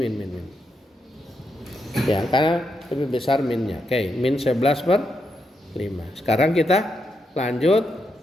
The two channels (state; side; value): normal; both; correlation 0.82